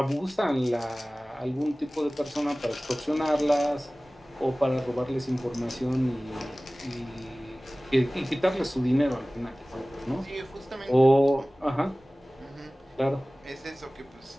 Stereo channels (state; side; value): normal; both; correlation 0.98